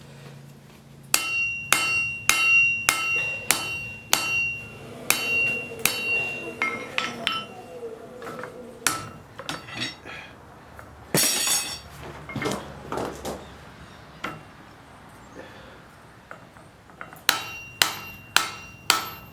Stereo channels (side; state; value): both; identical; correlation 1.00